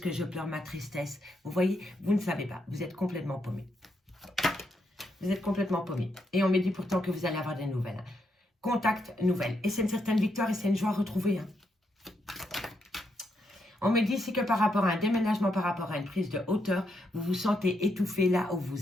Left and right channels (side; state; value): both; normal; correlation 0.79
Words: que je pleure ma tristesse? Vous voyez, vous ne savez pas. Vous êtes complètement paumés. Vous êtes complètement paumé. Et on me dit pourtant que vous allez avoir des nouvelles. Hein. Contact, nouvelles. Et c'est une certaine victoire et c'est une joie retrouvée. Hein. On me dit ici que par rapport à un déménagement, par rapport à une prise de hauteur, vous vous sentez étouffé là où